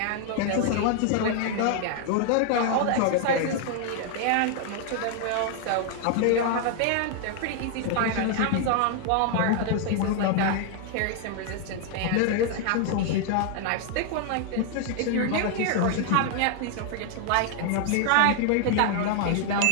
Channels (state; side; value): different; both; correlation 0.00